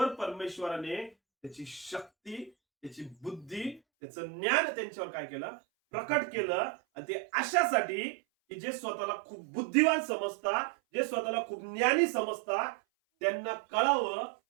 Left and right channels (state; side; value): drops out; left; at 3.8 s